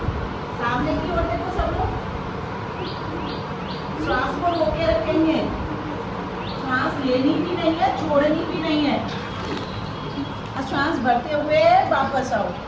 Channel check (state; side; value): identical; both; correlation 1.00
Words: सामने की छोड़नी भी नहीं है। श्वास भरते हुए वापस आओ।